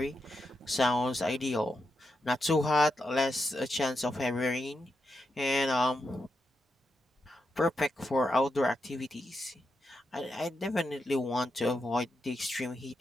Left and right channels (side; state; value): both; normal; correlation 0.85